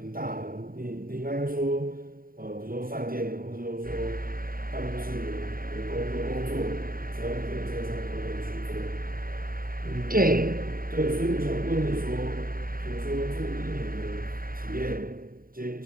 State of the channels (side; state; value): left; late; 0.42 ms